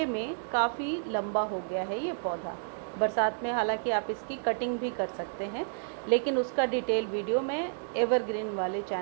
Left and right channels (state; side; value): silent; left; digital silence